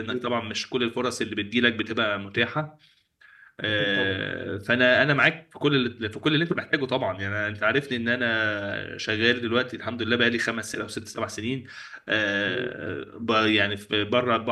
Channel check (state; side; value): identical; both; correlation 1.00